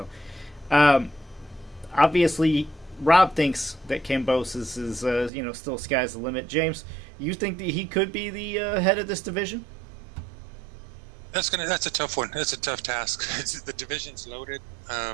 obviously, Rob thinks that Kambosos is, still sky's the limit. James, you think that he could be the head of this division? That's a tough one. That's a tough task. The division's loaded.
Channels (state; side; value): drops out; left; at 5.3 s